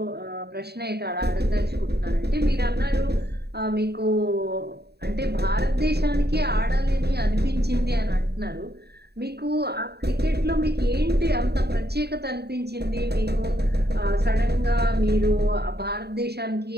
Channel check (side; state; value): left; late; 0.47 ms